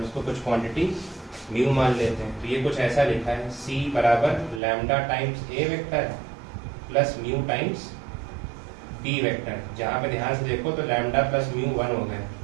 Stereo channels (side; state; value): left; drops out; at 4.6 s